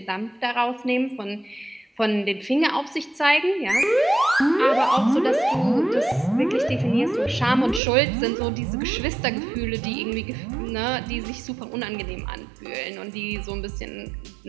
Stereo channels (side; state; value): left; drops out; at 7.8 s